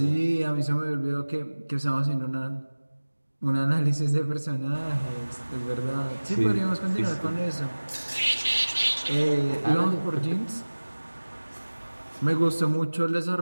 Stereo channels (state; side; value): inverted; both; correlation -1.00